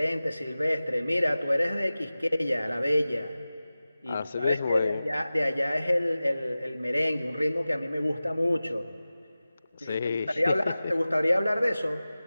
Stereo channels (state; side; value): inverted; both; correlation -0.96